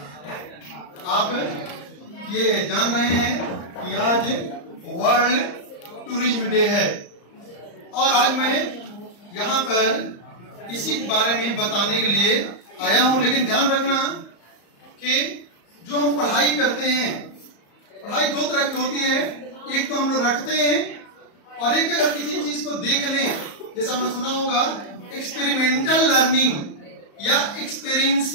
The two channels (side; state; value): right; late; 34 ms